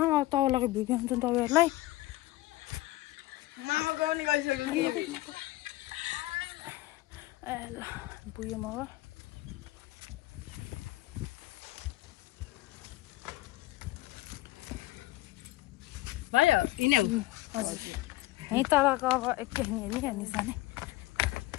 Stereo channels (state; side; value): quieter; right; 18.2 dB